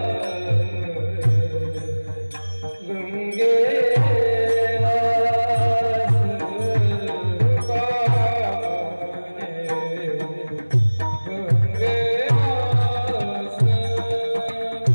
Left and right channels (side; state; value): both; inverted; correlation -1.00